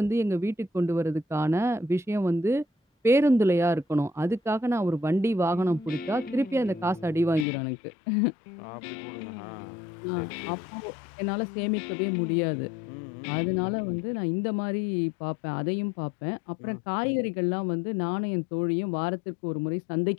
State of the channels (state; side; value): drops out; right; at 7.5 s